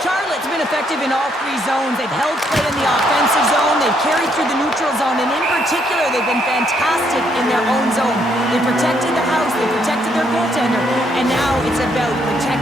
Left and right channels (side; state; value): both; normal; correlation 0.72